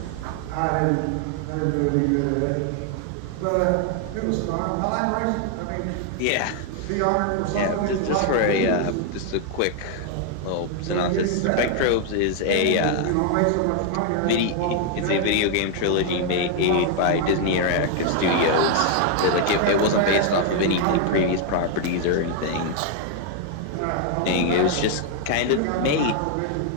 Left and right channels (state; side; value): different; both; correlation 0.00